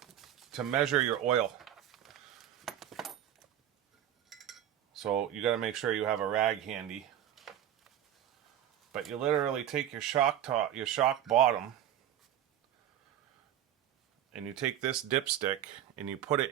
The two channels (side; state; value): left; quieter; 11.1 dB